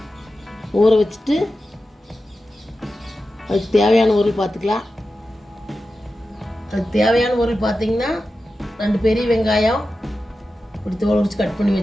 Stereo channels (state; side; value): normal; both; correlation 0.92